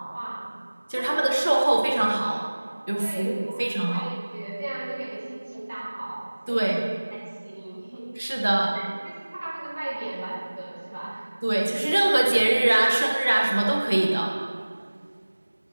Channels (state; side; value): inverted; both; correlation -1.00